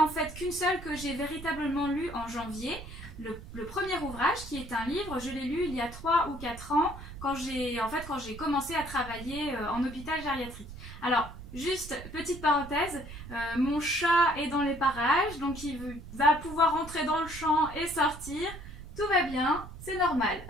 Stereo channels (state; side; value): noise; right; rumble, 13 dB below the sound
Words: en fait qu'une seule que j'ai véritablement lue en janvier. Le premier ouvrage, qui est un livre, je l'ai lu il y a 3 ou 4 ans, quand j'ai commencé à travailler en hôpital gériatrique. Alors, juste petite parenthèse, mon chat est dans les parages, donc il va pouvoir entrer dans le champ et sortir. Tout va bien, c'est normal.